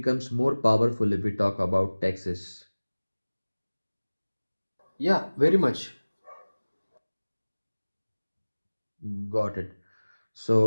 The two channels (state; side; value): inverted; both; correlation -1.00